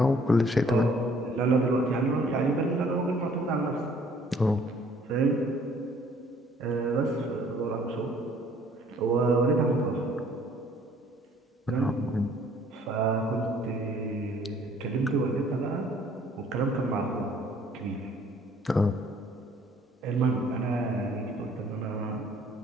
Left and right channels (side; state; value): both; normal; correlation 0.59